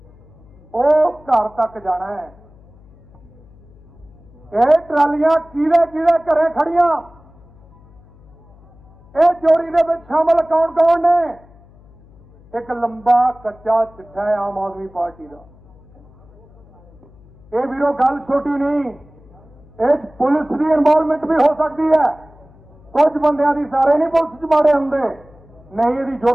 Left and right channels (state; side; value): noise; left; hum, 26 dB below the sound